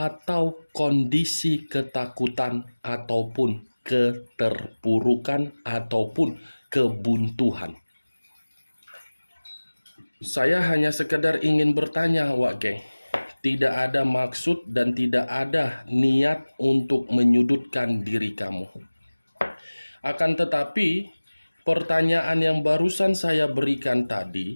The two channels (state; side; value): inverted; both; correlation -1.00